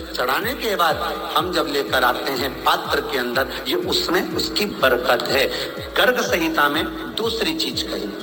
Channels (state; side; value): identical; both; correlation 1.00